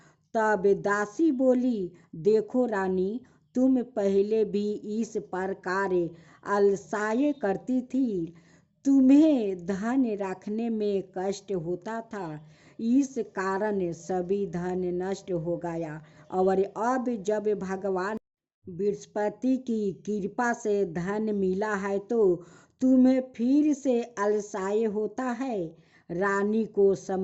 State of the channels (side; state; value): both; identical; correlation 1.00